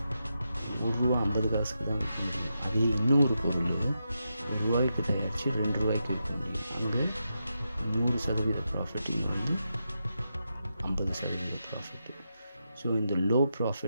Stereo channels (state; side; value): inverted; both; correlation -0.86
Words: ₹1.50 தான் விற்க முடியும். அதே இன்னொரு பொருள் ₹1 தயாரித்து ₹2 விற்க முடியும். அங்கே 100% ப்ராஃபிட், இங்கே வந்து 50% ப்ராஃபிட்டு. ஸோ இந்த லோ